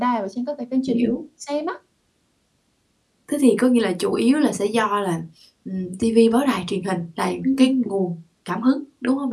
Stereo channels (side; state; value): both; identical; correlation 1.00